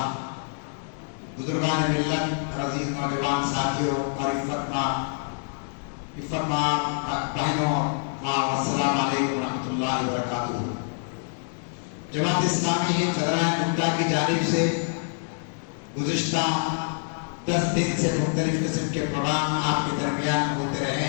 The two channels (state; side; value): silent; right; digital silence